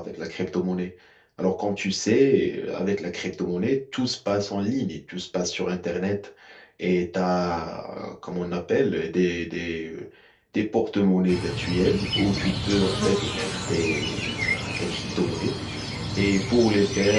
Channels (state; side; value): identical; both; correlation 1.00